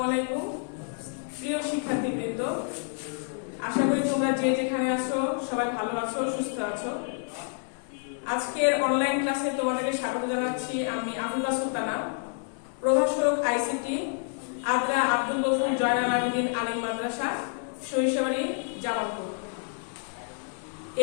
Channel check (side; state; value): right; silent; 59 dB below the other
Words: আলাইকুম প্রিয় শিক্ষার্থীবৃন্দ, আশা করি তোমরা যে যেখানে আছো সবাই ভালো আছো, সুস্থ আছো। আজকের অনলাইন ক্লাসে তোমাদেরকে স্বাগত জানাচ্ছি। আমি আবুল্লাহ সুলতানা, প্রভাষক আইসিটি, আদ্রা আব্দুল গফুর জয়নাল আবেদীন আলিম মাদ্রাসা, সরিষাবাড়ি, জামালপুর।